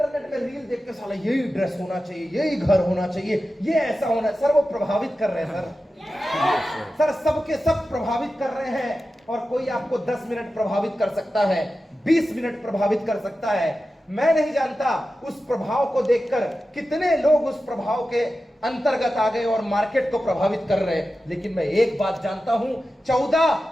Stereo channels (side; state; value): both; normal; correlation 0.93